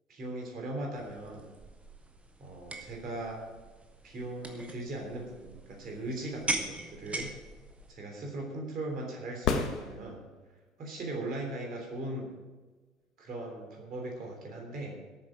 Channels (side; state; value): both; normal; correlation 0.34